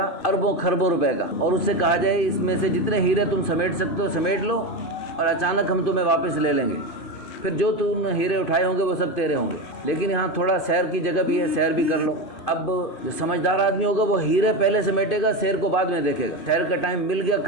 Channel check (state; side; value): late; right; 2.5 ms